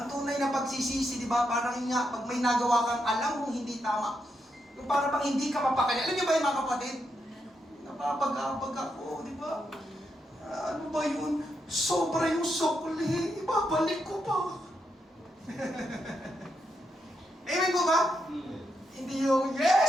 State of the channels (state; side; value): normal; both; correlation 0.82